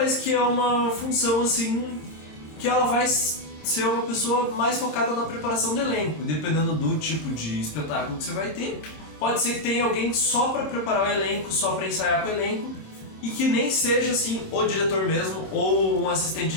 que é uma função assim que ela vai ser uma pessoa mais focada na preparação do elenco, dependendo do tipo de espetáculo que você vai ter. Pode ser que tenha alguém só para preparar o elenco, só para ensaiar com o elenco, e que nem seja assim o diretor mesmo ou um assistente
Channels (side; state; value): right; late; 27 ms